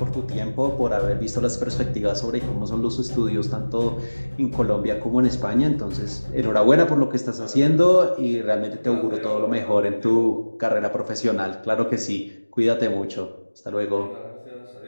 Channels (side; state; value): both; inverted; correlation -1.00